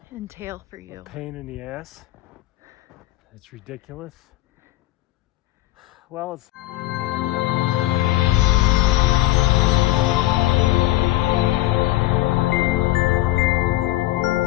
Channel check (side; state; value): right; quieter; 16.8 dB